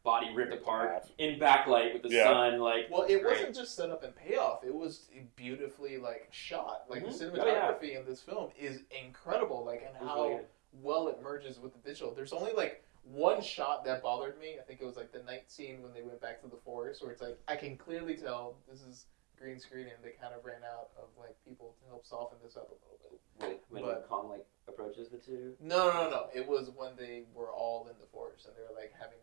body ripped apart in backlight with the sun, like. Well, it wasn't just set up and payoff; it was beautifully like shot. Like the cinematography in this film is incredible, like, and how really well it merges with the digital. There's only like one shot that bothered me. I think it was like the night scene when they went back to the forest, where it's like I can clearly tell this is green screen, and they kind of ran out of like people to help soften this up a little bit. When Kong like approaches the two? No. It was when they were all in the forest and they were like having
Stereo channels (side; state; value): left; quieter; 32.1 dB